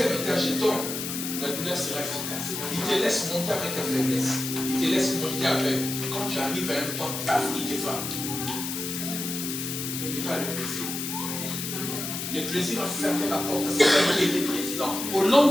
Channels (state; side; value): noise; left; hiss, 5 dB below the sound